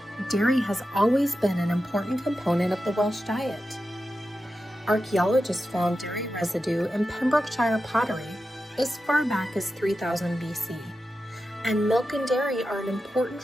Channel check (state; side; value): normal; both; correlation 0.91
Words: Dairy has always been an important component of the Welsh diet. Archaeologists found dairy residue in Pembrokeshire pottery as far back as 3000 BC, and milk and dairy are an important